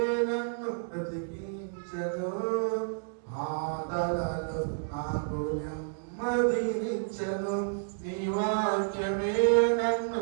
నన్ను బ్రతికించెను. బాధలలో నాకు నెమ్మదినిచ్చెను. నీ వాక్యమే నన్ను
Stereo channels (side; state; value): left; silent; digital silence